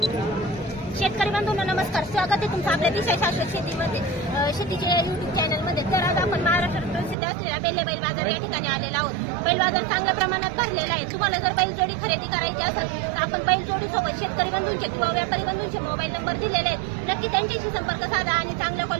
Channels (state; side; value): drops out; left; at 7.2 s